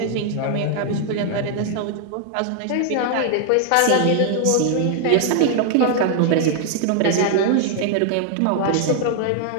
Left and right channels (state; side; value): different; both; correlation 0.00